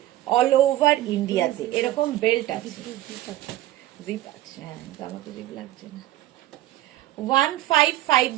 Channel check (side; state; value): left; quieter; 14.8 dB